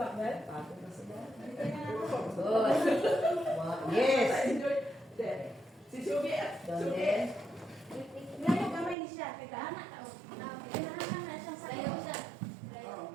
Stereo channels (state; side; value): drops out; left; at 9.0 s